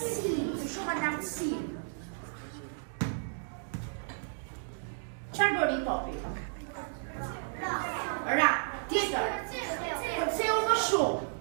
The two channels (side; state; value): left; silent; digital silence